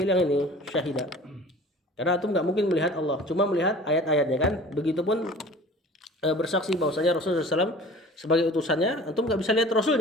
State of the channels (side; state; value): both; normal; correlation 0.44